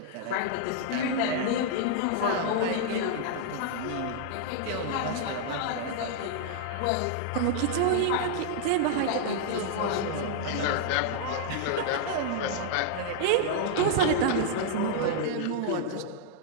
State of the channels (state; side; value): different; both; correlation -0.01